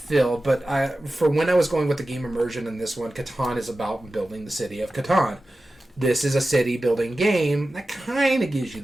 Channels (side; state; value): both; normal; correlation 0.94